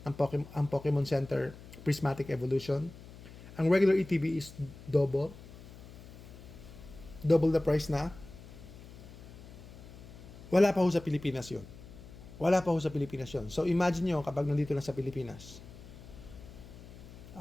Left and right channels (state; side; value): noise; left; hum, 17 dB below the sound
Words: ang Pokemon Center Prismatic Evolution. Ang regular ETB is double the price na. Wala pa ho sa Pilipinas yun. So imagine nyo kapag nandito na sa Pilipinas.